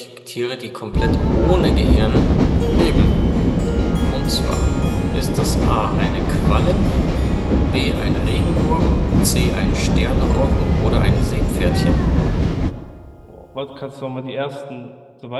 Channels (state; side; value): identical; both; correlation 1.00